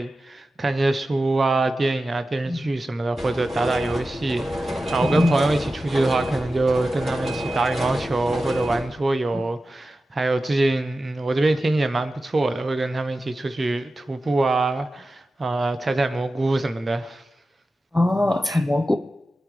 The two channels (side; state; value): both; normal; correlation 0.93